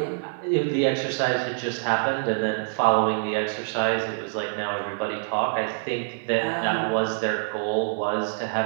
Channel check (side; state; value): left; silent; 61 dB below the other